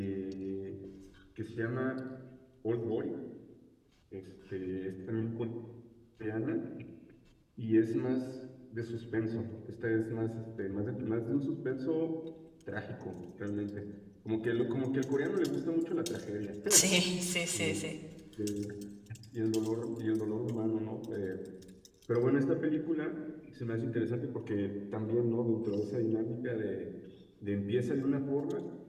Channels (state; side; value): identical; both; correlation 1.00